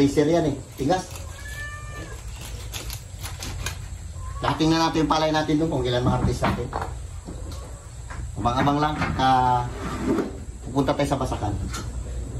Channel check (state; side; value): identical; both; correlation 1.00